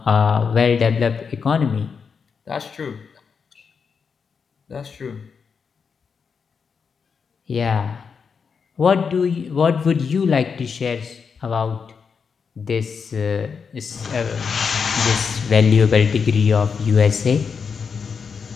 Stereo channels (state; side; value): quieter; right; 5.9 dB